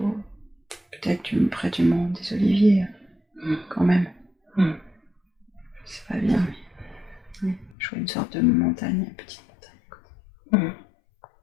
peut-être près du mont des Oliviers, quand même. C'est pas bien, mais oui, je vois une sorte de montagne, une petite montagne.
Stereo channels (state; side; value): drops out; right; at 7.8 s